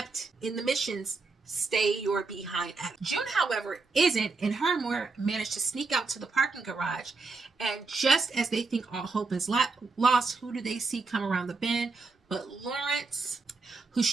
in the missions, stay your behind. June, however, isn't, and her and Moira managed to sneak out to the parking garage, and just as they think all hope is lost, who do they see come around the bend but Lawrence, who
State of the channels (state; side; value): quieter; left; 4.0 dB